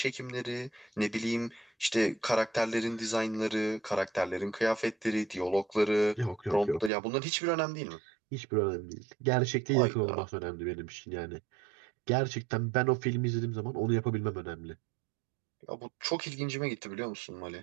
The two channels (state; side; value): drops out; left; at 6.9 s